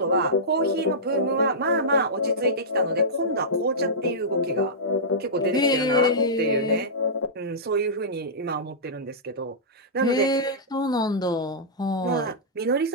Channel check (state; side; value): normal; both; correlation -0.15